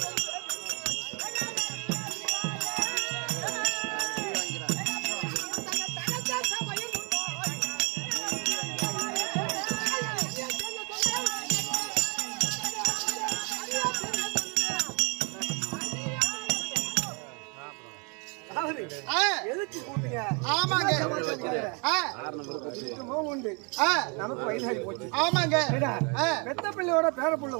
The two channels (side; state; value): left; quieter; 33.9 dB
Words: ஆமாங்க நமக்கு வயசாகி போச்சு. ஆமாங்க பெத்த பிள்ளையோட பேர புள்ள